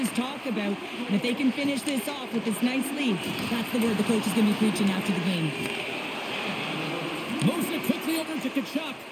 talk about. And if they can finish this off with this nice lead, that's the word the coach is going to be preaching after the game. Moves it quickly over to Kachuk.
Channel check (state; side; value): identical; both; correlation 1.00